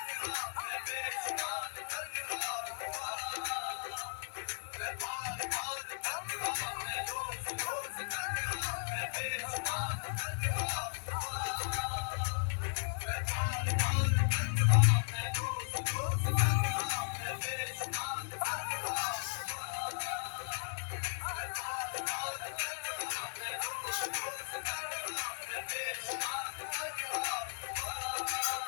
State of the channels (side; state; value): right; silent; 54 dB below the other